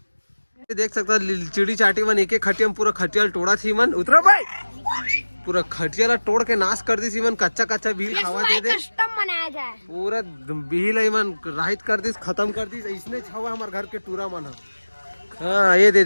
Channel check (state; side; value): inverted; both; correlation -1.00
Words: देख सकते हो चिड़ी चाटी मन एक खटिया में पूरा खटिया तोड़ा थी मन। उतरो भाई, पूरा खटिया ला तोड़ के नाश कर दी थी मन। कच्चा कच्चा भील खावा दे दे, कस्टम बनाया जाए। पूरा भील मन राहित कर दी, खत्म कर दी। इसने छावा हमारे घर के टूरा मन। हाँ ये